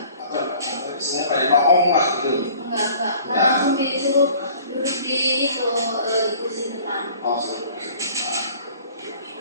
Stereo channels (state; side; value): inverted; both; correlation -0.51